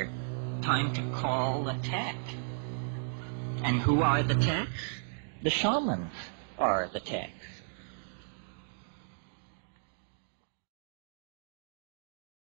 Time to call a tech. And who are the techs? The shamans are the techs.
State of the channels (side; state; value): left; silent; digital silence